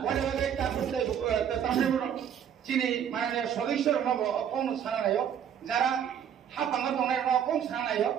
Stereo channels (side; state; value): left; quieter; 8.8 dB